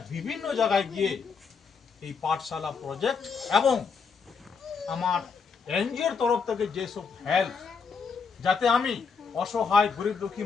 বিভিন্ন জায়গায় গিয়ে এই পাঠশালা প্রজেক্ট এবং আমার এনজিওর তরফ থেকে যেসব হেল্প যাতে আমি অসহায় গরিব দুঃখী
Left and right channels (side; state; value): right; quieter; 5.6 dB